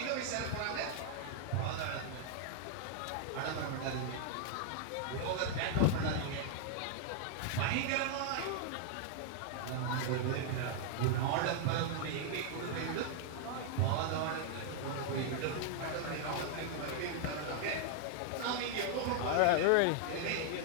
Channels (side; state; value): both; different; correlation 0.00